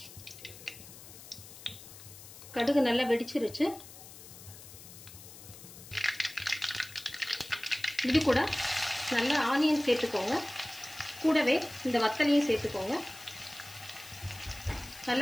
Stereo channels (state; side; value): noise; left; hiss, 16 dB below the sound